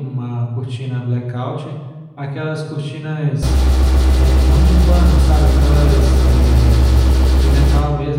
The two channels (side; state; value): both; identical; correlation 1.00